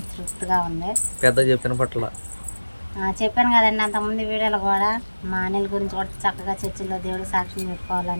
తృప్తిగా ఉంది పెద్ద చెప్పిన పట్ల చెప్పాను కదండి అంతమంది వీడియోలు కూడా మా అనిల్ గురించి కూడా చక్కగా చర్చిలో దేవుడికి సాక్ష్యం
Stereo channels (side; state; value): both; inverted; correlation -1.00